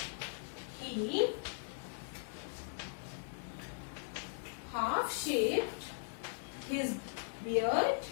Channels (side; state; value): right; silent; digital silence